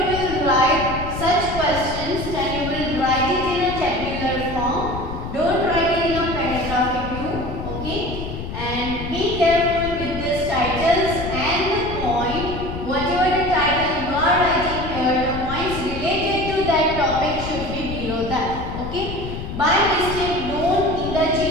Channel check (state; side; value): noise; left; rumble, 7 dB below the sound